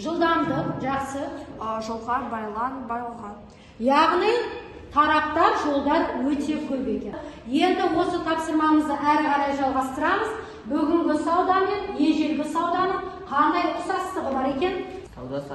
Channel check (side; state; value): both; identical; correlation 1.00